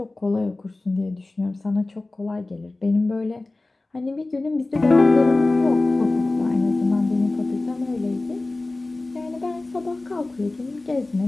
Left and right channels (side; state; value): right; quieter; 3.0 dB